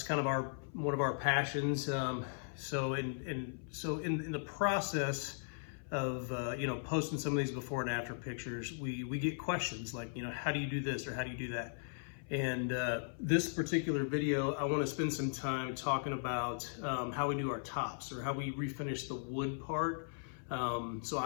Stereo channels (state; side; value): silent; right; 53 dB below the other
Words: kind of one of our passions. So in the process of posting some of these before and after pictures, we get questions like, how do you do this or how do you do that? And this particular video, I want to spend some time talking about how we do our tops or how we refinish the wood part. So